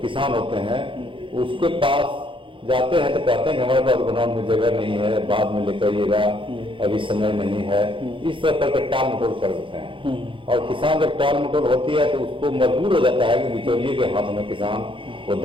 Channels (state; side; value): late; left; 0.25 ms